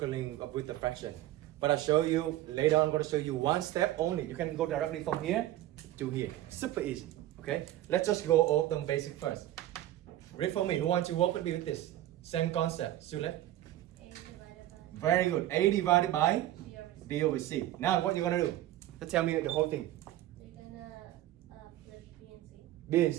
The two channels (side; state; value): left; quieter; 14.1 dB